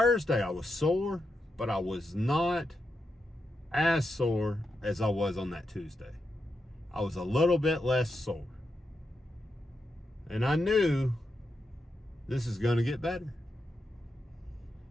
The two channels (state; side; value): normal; both; correlation 0.86